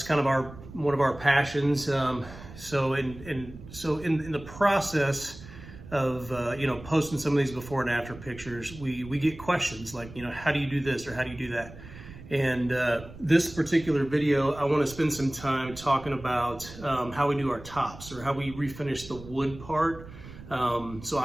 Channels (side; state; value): right; noise; rumble, 16 dB below the sound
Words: kind of one of our passions. So in the process of posting some of these before and after pictures, we get questions like, how do you do this or how do you do that? And this particular video, I want to spend some time talking about how we do our tops or how we refinish the wood part. So